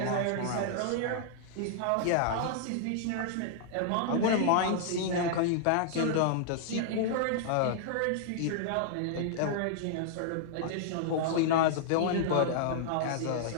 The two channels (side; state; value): both; different; correlation -0.01